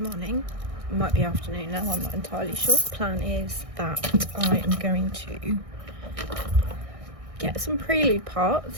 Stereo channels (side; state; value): left; late; 1.6 ms